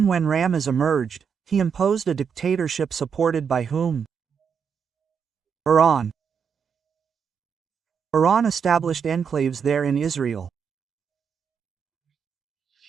when Ramez emerged, he imposed a dictatorship supported by whom? Iran. Iran established enclaves there in Israel.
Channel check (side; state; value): left; quieter; 6.8 dB